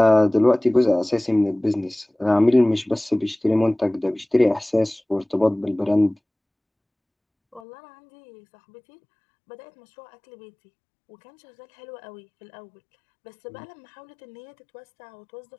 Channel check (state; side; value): drops out; right; at 7.6 s